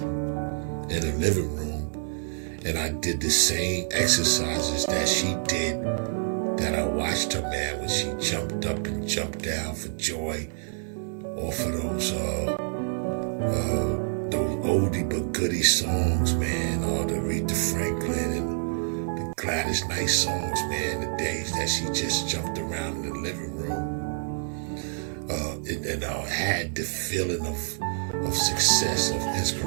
in the living room and I did the same exercises that she did, that I watched her, man, when she jumped up and jumped down for joy off of those oldie but goodie songs, man, all the Aretha Franklin and the Gladys Knight songs, man, the days that she just jumped around in the living room. And I had the feeling of success, of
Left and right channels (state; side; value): silent; left; digital silence